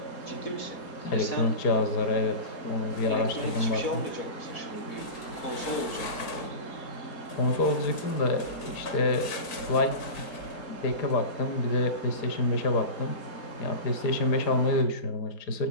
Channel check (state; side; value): late; right; 4.6 ms